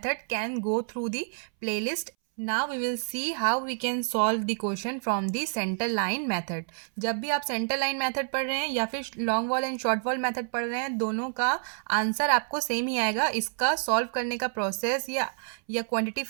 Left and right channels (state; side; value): silent; left; 59 dB below the other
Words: can go through the playlist. Now we will see how we can solve the question from the center line method. जब भी आप center line method पढ़ रहे हैं या फिर long wall and short wall method पढ़ रहे हैं, दोनों का आंसर आपको सेम ही आएगा. इसका सॉल्व करने का प्रोसेस या क्वांटिटी